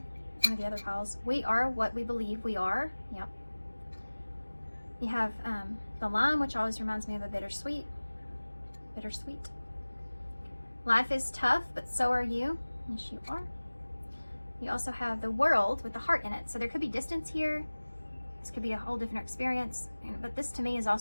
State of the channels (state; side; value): inverted; both; correlation -1.00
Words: one of the other piles. We are what we believe we are. Yep. You have the lime, which always reminds me of a bittersweet. Bittersweet. Life is tough, but so are you. Yes, you are. You also have the world with the heart in it. So there could be distance here. This could be a whole different experience. But this to me is